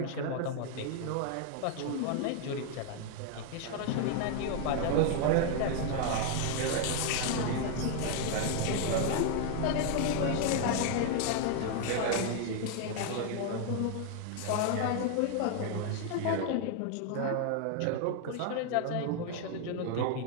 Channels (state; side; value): different; both; correlation 0.00